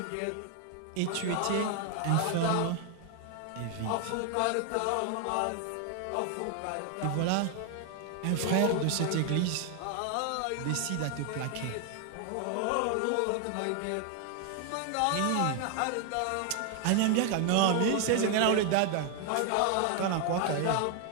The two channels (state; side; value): different; both; correlation 0.00